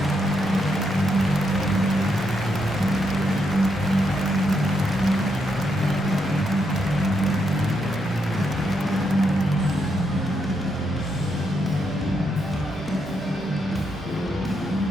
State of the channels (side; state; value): both; normal; correlation 0.79